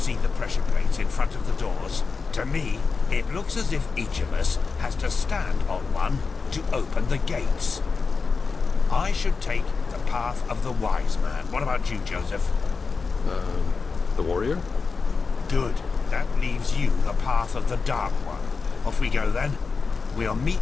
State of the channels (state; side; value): quieter; right; 4.7 dB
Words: the pressure plates in front of the doors? To me, it looks as if each of us has to stand on one to open the gates. I should take the path of the wise man. What about you, Joseph? The warrior? Good. That leaves you the path of the dark one. Off we go then. We'll